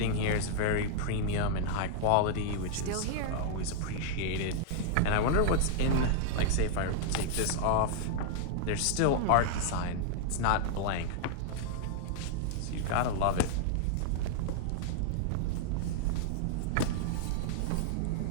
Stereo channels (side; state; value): both; different; correlation 0.00